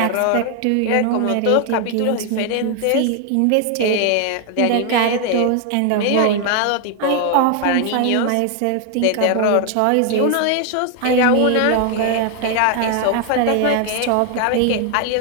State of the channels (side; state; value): both; different; correlation 0.00